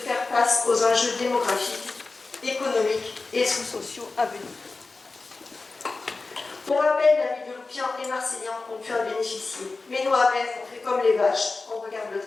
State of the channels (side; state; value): right; quieter; 3.8 dB